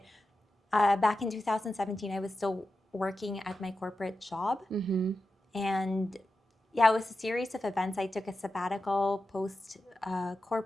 back in 2017, I was still working at my corporate job. And yeah, it was a series of events. I took a sabbatical post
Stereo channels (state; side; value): normal; both; correlation 0.92